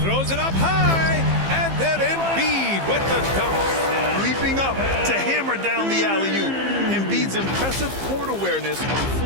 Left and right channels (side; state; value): left; late; 15 ms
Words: Throws it up high, and then Embiid with the dunk. Leaping up to hammer down the alley-oop. Embiid's impressive court awareness on